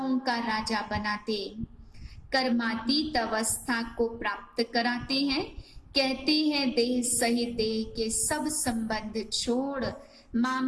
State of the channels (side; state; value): both; identical; correlation 1.00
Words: का राजा बनाते, कर्मातीत अवस्था को प्राप्त कराते हैं। कहते हैं देह सहित देह के सब संबंध छोड़